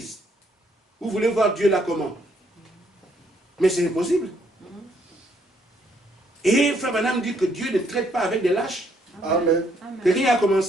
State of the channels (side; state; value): both; normal; correlation 0.70